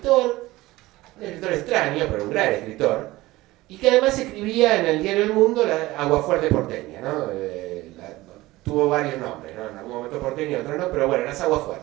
extraño, pero un gran escritor, y que además escribía en el diario El Mundo la Aguafuerte porteña, ¿no? Tuvo varios nombres, ¿no? En algún momento porteña, en otros no, pero bueno, las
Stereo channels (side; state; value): left; quieter; 18.6 dB